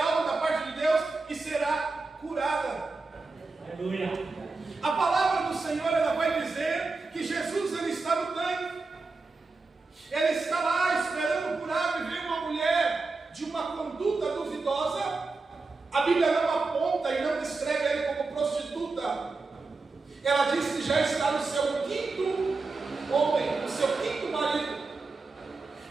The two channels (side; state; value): left; quieter; 3.9 dB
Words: da parte de Deus e será curada. Aleluia. A palavra do Senhor, ela vai dizer que Jesus, ele está no tanque, ele está lá esperando curar, e vem uma mulher de uma conduta duvidosa. A Bíblia não aponta e não descreve ele como prostituta. Ela diz que já está no seu quinto homem, no seu quinto marido.